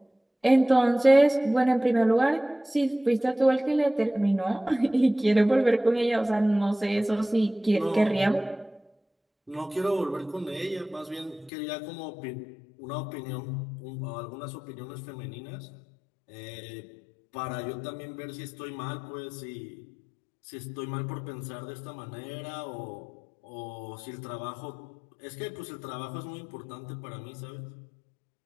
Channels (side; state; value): right; drops out; at 11.5 s